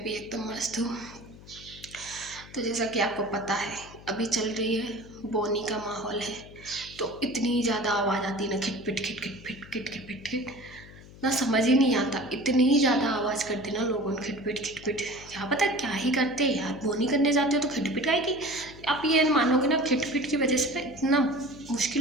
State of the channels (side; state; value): left; noise; hum, 19 dB below the sound